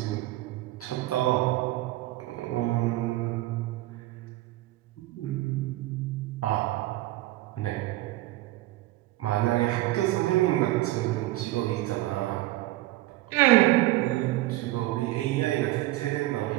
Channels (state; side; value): quieter; left; 17.3 dB